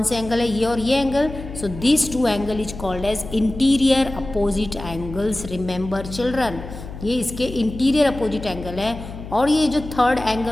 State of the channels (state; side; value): noise; left; hum, 12 dB below the sound